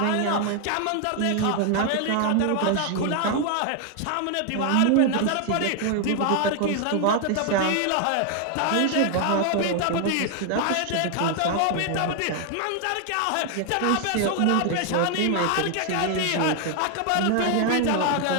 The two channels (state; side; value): different; both; correlation 0.00